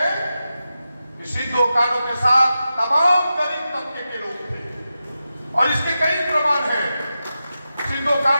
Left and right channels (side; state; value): both; inverted; correlation -0.91